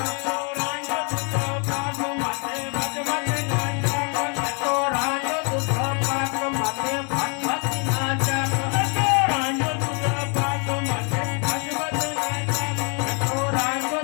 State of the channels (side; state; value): right; quieter; 36.4 dB